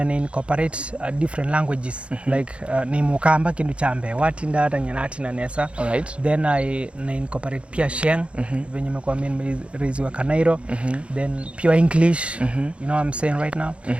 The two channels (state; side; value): late; left; 0.060 ms